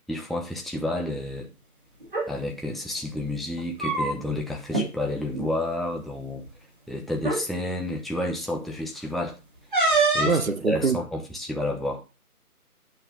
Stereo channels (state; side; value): normal; both; correlation 0.45